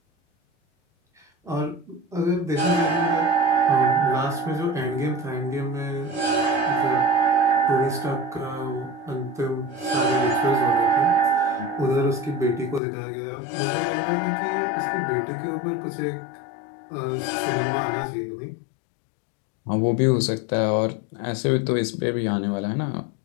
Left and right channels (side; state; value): right; drops out; at 12.8 s